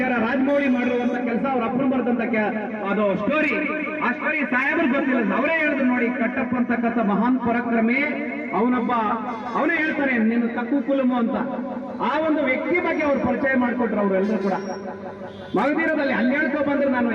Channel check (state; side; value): identical; both; correlation 1.00